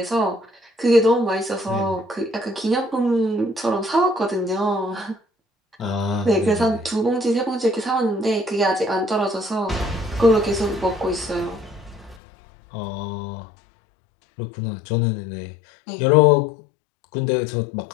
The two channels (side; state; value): right; drops out; at 12.2 s